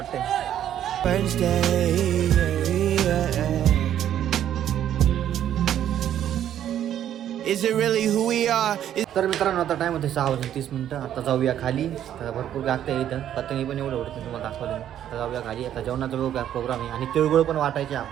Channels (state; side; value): quieter; left; 10.7 dB